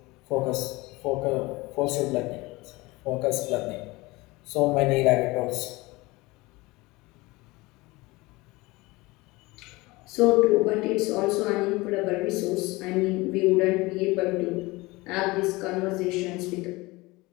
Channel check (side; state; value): right; quieter; 22.3 dB